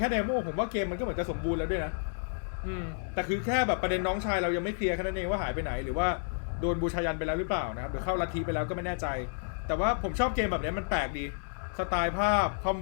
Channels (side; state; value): right; silent; 57 dB below the other